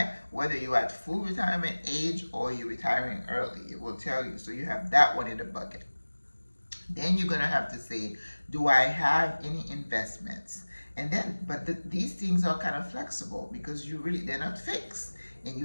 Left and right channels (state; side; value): inverted; both; correlation -1.00